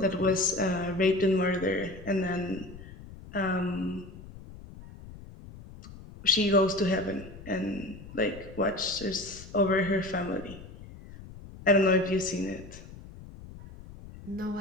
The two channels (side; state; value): left; noise; rumble, 16 dB below the sound